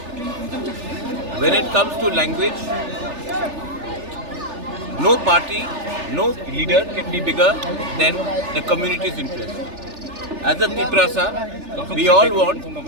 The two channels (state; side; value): late; left; 3.4 ms